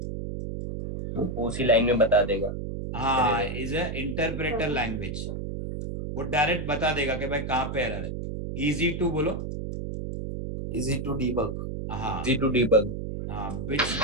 उसी लाइन में बता देगा। हाँ इज ए इंटरप्रेटर लैंग्वेज, वो डायरेक्ट बता देगा कि भाई कहाँ पे एरर है। इजी टू बोलो, Easy to debug. हाँ Easy to debug. हाँ which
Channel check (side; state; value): right; noise; hum, 5 dB below the sound